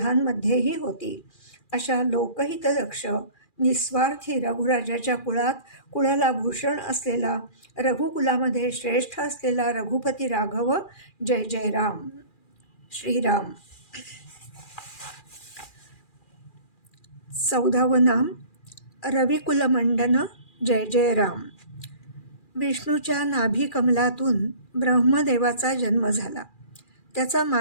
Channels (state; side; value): late; right; 2.4 ms